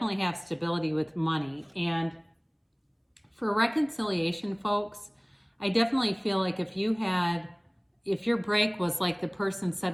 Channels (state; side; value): identical; both; correlation 1.00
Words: have stability with money. And for reconciliation, folks, I definitely feel like if your break was like the person